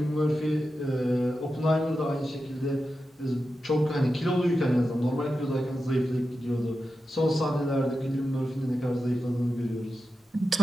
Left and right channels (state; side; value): normal; both; correlation 0.91